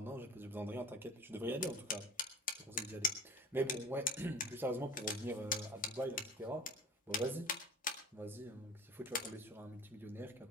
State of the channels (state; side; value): normal; both; correlation 0.40